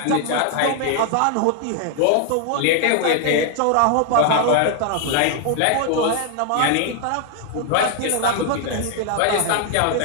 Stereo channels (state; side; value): different; both; correlation 0.00